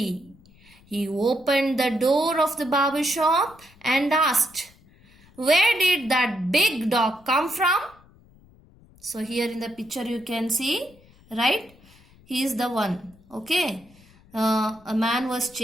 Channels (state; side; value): noise; left; rumble, 27 dB below the sound